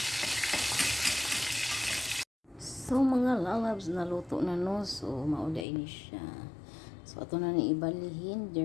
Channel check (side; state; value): right; drops out; at 5.7 s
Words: So mga lalabs, naluto na no. So mauda ini siya. So ato na ni ibalihin